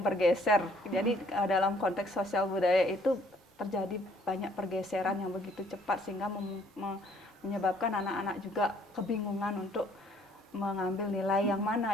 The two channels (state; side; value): normal; both; correlation 0.62